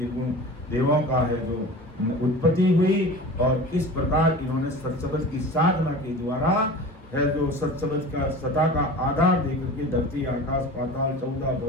देवों का है जो उत्पत्ति हुई, और किस प्रकार इन्होंने सत्संग की साधना के द्वारा है जो सत्संग का सता का आधार देकर के धरती आकाश पाताल 14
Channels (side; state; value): both; normal; correlation 0.36